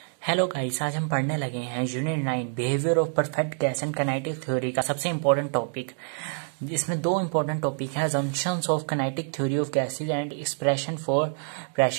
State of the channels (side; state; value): left; silent; 58 dB below the other